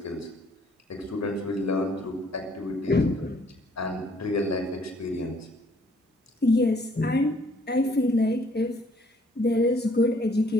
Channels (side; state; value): both; normal; correlation 0.63